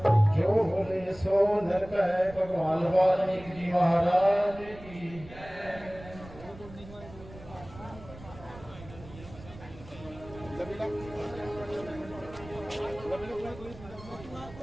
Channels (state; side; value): noise; right; rumble, 17 dB below the sound